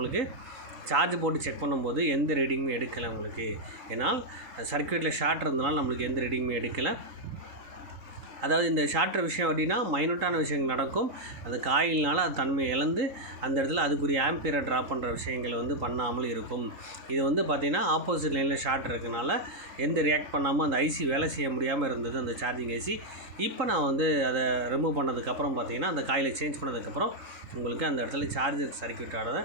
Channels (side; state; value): left; late; 3.8 ms